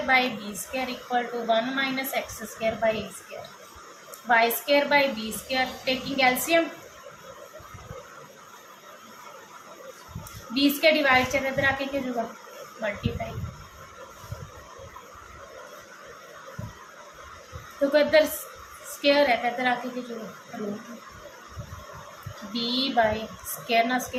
by b square equal to 1 minus x square by a square, y square by b square taking LCM, b square divide से इधर आके क्या होगा मल्टीप्लाई। तो इधर स्केयर है तो इधर आके क्या होगा रूट, बी बाई स्केयर ना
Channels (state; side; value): identical; both; correlation 1.00